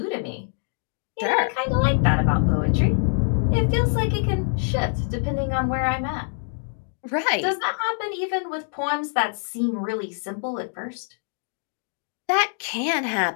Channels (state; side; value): silent; right; digital silence